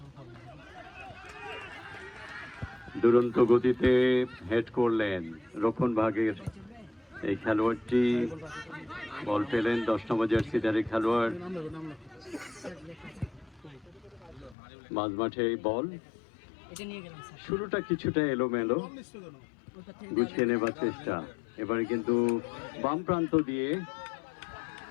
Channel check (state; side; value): drops out; right; at 14.6 s